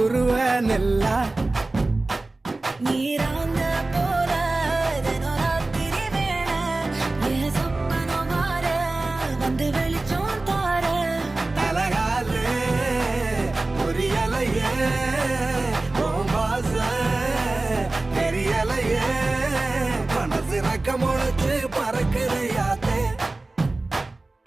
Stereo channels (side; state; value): left; quieter; 3.1 dB